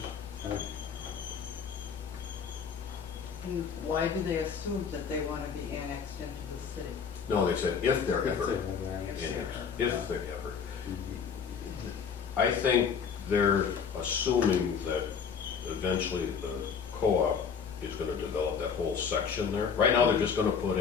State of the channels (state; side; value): quieter; right; 6.5 dB